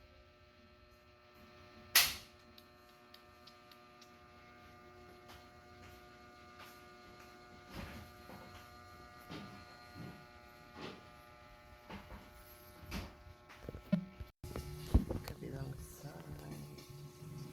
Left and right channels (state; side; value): identical; both; correlation 1.00